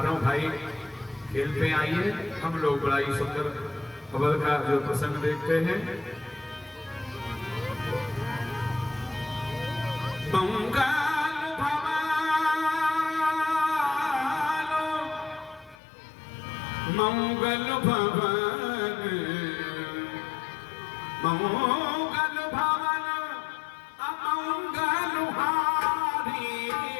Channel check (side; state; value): right; drops out; at 15.8 s